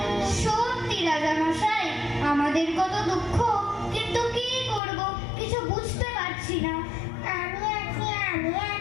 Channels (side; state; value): right; drops out; at 4.8 s